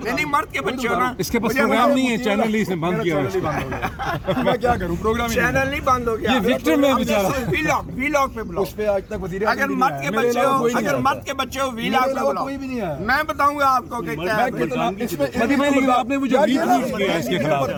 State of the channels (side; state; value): both; identical; correlation 1.00